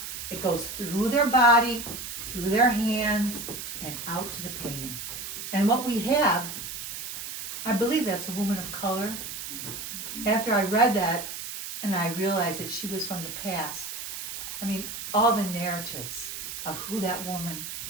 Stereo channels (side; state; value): right; noise; hiss, 7 dB below the sound